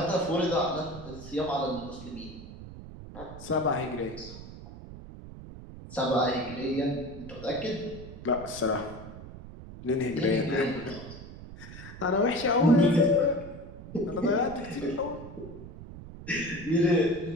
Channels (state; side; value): noise; right; rumble, 14 dB below the sound